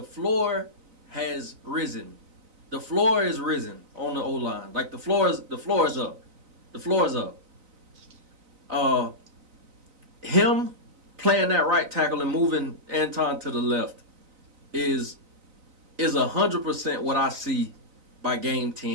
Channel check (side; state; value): left; late; 3.9 ms